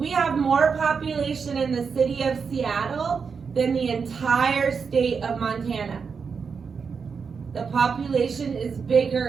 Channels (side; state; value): left; quieter; 5.7 dB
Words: have more population in the city of Seattle than the entire state of Montana. The population is